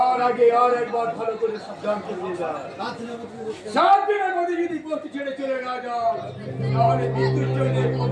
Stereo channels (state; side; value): identical; both; correlation 1.00